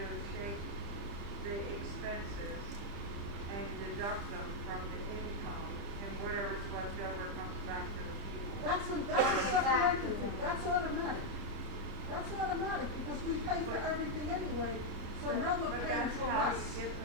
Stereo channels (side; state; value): left; late; 30 ms